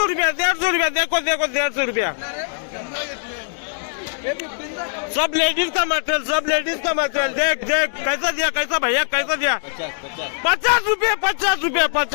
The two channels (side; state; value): right; silent; digital silence